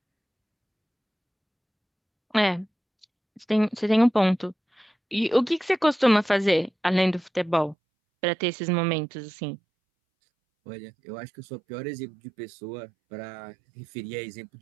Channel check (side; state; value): left; drops out; at 7.8 s